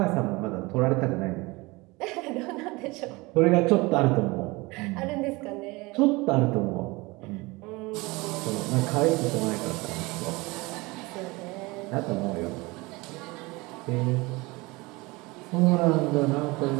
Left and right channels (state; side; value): quieter; left; 23.6 dB